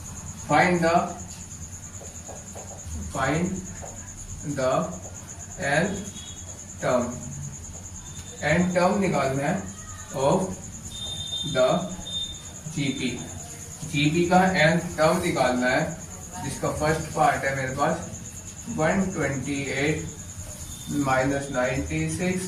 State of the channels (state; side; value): identical; both; correlation 1.00